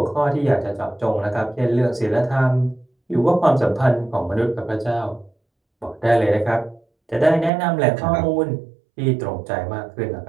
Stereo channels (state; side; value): drops out; left; at 7.5 s